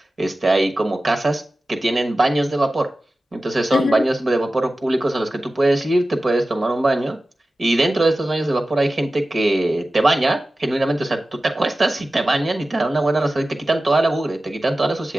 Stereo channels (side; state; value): both; normal; correlation 0.95